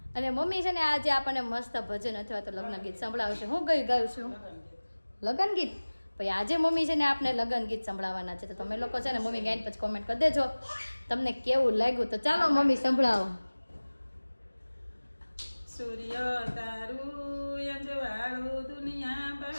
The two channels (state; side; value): inverted; both; correlation -1.00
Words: અને મમ્મી છે ને આજે આપણને મસ્ત ભજન અથવા તો લગ્ન ગીત સંભળાવશે. હું ગાયું છું લગ્ન ગીત. પછી આજે મમ્મી છે ને આપણે લગ્ન ગીત સંભળાવવાના છે. તો તમે લોકો છે ને મમ્મી ગાઈને પછી કોમેન્ટ કરી દેજો તમને કેવું લાગ્યું. તો ચાલો મમ્મી સંભળાવો. સૂર્ય તારું અંજવાળું દુનિયા